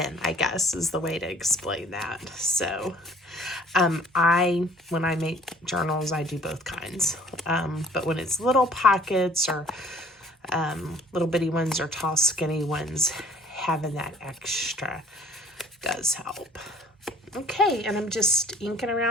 I guess, is the way to explain that. So when I make journals, I do both kinds. But when it's little pockets or little bitty ones or tall skinny ones, having that extra does help. Okay, and I'm just inking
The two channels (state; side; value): normal; both; correlation 0.55